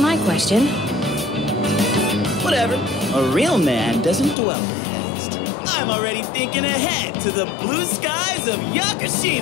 question. Whatever. A real man doesn't dwell in the past. I'm already thinking ahead to the blue skies of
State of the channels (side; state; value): right; drops out; at 4.4 s